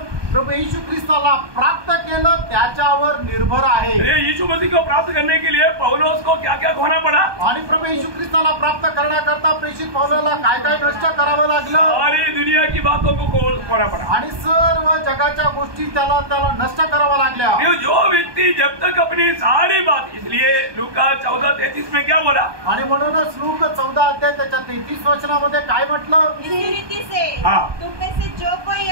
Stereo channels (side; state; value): left; late; 1.2 ms